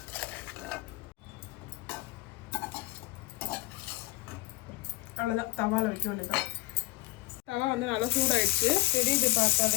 அவ்வளோதான். தவால வைக்க வேண்டியதான். தவா வந்து நல்லா சூடாயிடுச்சு. தெரியுது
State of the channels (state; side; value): quieter; right; 20.7 dB